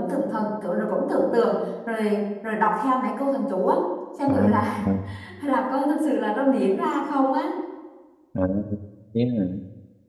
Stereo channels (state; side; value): identical; both; correlation 1.00